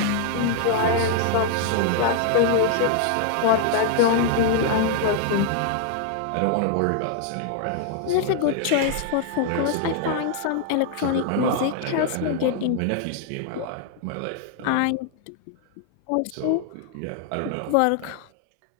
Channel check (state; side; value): different; both; correlation -0.01